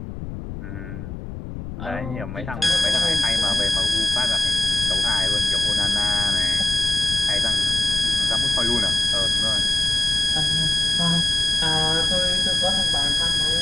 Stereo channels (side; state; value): left; noise; rumble, 9 dB below the sound